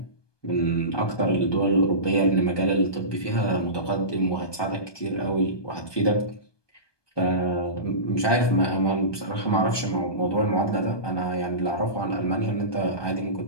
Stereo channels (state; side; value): late; right; 1.2 ms